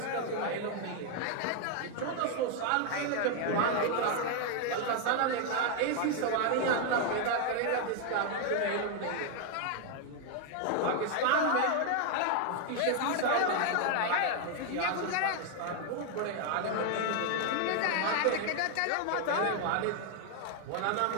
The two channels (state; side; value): different; both; correlation 0.00